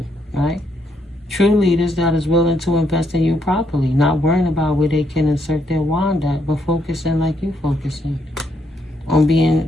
right? True leaders that is willing to invest in you properly, not worrying about where they can insert their wand at, but focusing like you focusing on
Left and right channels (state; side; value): normal; both; correlation 0.75